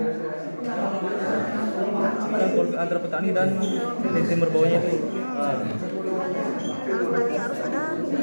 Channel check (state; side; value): inverted; both; correlation -1.00